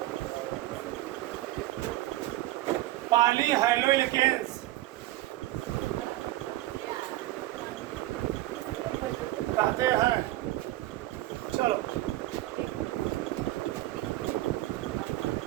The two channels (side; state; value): left; quieter; 16.8 dB